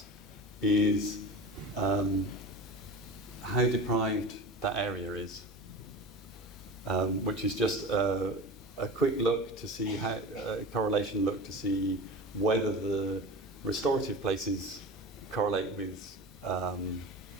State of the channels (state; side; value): normal; both; correlation 0.32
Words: is how deprived that area is, which is just a quick look to see how, a correlation look to see whether the restorative places correlate with